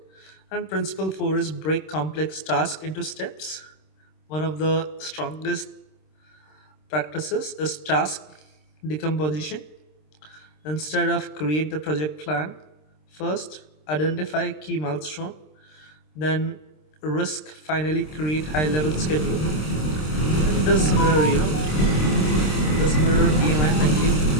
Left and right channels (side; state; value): right; late; 26 ms